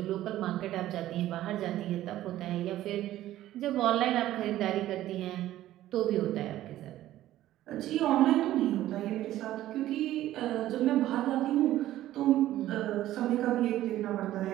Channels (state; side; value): quieter; left; 14.0 dB